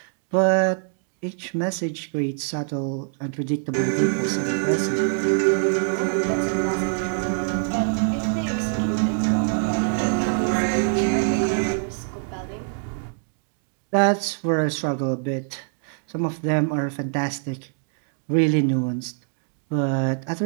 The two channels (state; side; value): silent; left; digital silence